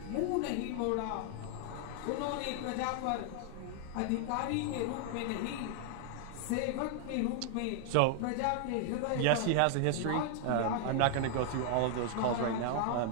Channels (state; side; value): different; both; correlation -0.01